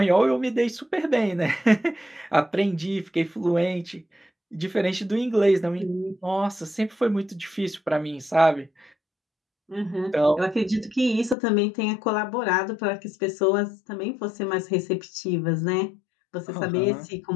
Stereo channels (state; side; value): drops out; right; at 11.4 s